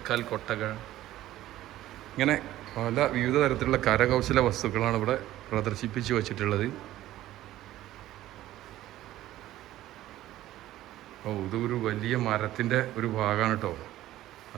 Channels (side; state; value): left; quieter; 14.5 dB